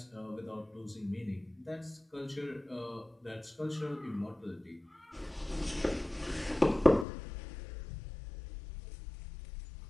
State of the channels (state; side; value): drops out; right; at 7.1 s